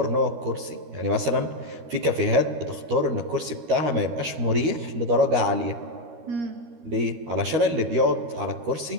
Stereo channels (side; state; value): left; late; 13 ms